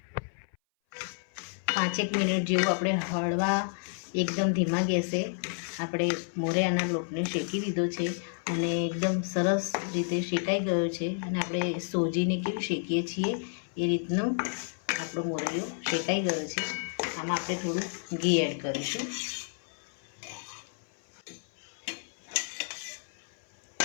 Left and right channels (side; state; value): right; silent; 57 dB below the other